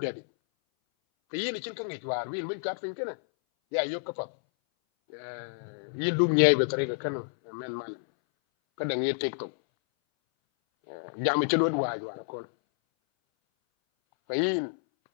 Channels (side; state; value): right; silent; 58 dB below the other